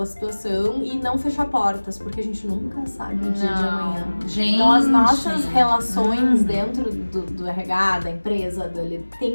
situação e não fechar portas, porque a gente nunca sabe o dia de amanhã. Gente. Então as nossas relações dentro do RH, da empresa, tem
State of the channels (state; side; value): inverted; both; correlation -1.00